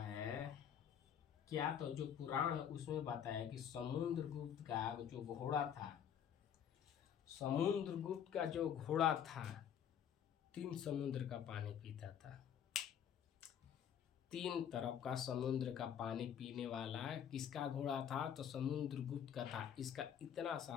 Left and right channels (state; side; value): quieter; right; 8.8 dB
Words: क्या, तो जो पुराण है उसमें बताया कि समुद्रगुप्त का जो घोड़ा था, समुद्रगुप्त का जो घोड़ा था 3 समुद्र का पानी पीता था। 3 तरफ का समुद्र का पानी पीने वाला किसका घोड़ा था? तो समुद्रगुप्त का था। इसका इतना